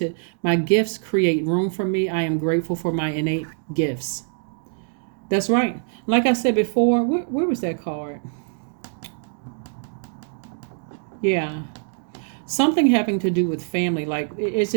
My gifts create room for me. I am grateful for my innate gifts. That's right. Like I said before, where was that card? Yeah. Something having to do with family. Like it's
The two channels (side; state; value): left; silent; 61 dB below the other